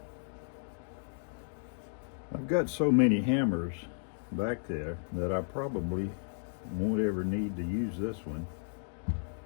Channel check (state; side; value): silent; right; digital silence